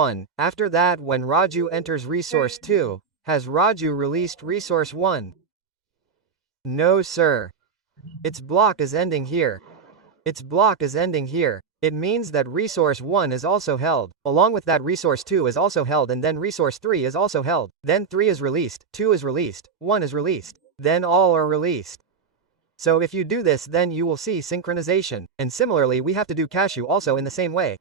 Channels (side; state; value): left; quieter; 5.8 dB